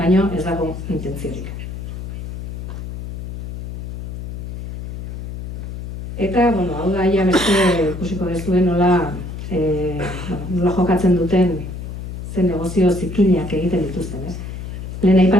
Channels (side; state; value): left; noise; hum, 8 dB below the sound